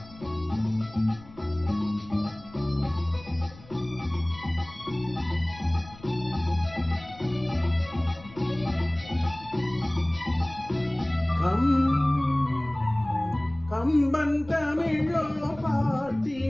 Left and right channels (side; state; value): left; noise; rumble, 21 dB below the sound